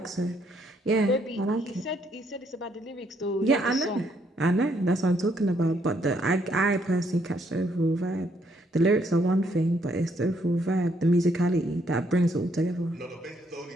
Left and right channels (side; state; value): both; normal; correlation 0.71